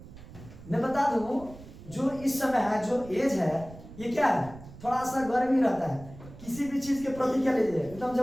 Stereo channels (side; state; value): right; noise; rumble, 17 dB below the sound